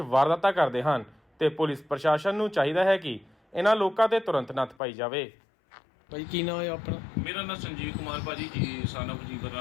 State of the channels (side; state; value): right; drops out; at 4.8 s